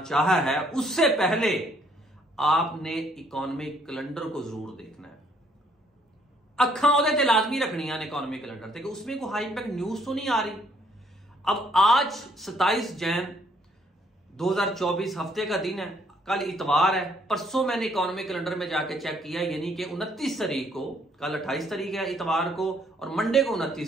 चाहा है, उससे पहले आपने इकोनॉमिक कैलेंडर को जरूर देखना है। अखा ਉਹਦੇ ਤੇ लाजमी रखनियां ने इकोनॉमिक कैलेंडर ते कि उसमें कोई हाई इंपैक्ट न्यूज तो नहीं आ रही। अब आज 27 जैन 2024 हफ्ते का दिन है, कल इतवार है, परसों मैंने इकोनॉमिक कैलेंडर में जाके चेक किया, यानी कि 29 तारीख को, कल 28 तारीख है इतवार को और मंडे को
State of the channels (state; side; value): normal; both; correlation 0.66